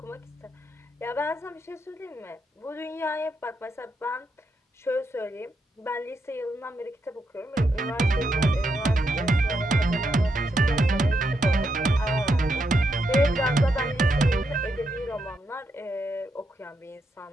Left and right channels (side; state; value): both; normal; correlation 0.81